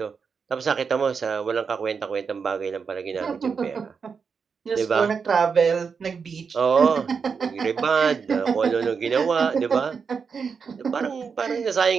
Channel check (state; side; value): quieter; left; 5.8 dB